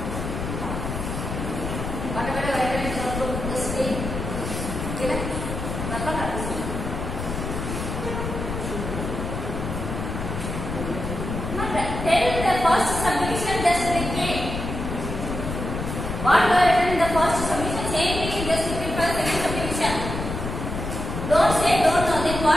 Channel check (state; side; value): noise; left; rumble, 5 dB below the sound